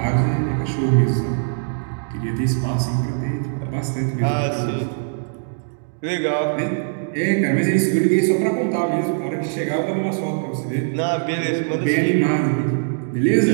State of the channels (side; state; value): left; silent; digital silence